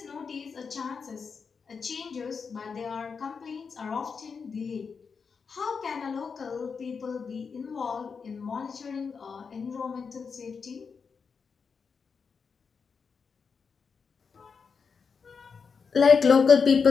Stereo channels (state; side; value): quieter; right; 5.6 dB